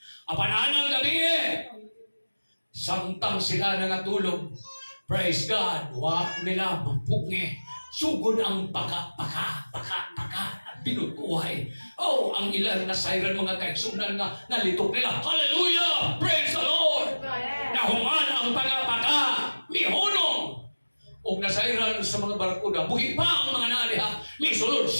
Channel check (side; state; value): both; inverted; correlation -1.00